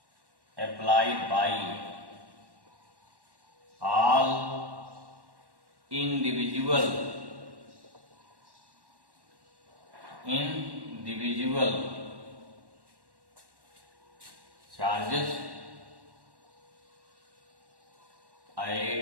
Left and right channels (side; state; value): left; late; 1.1 ms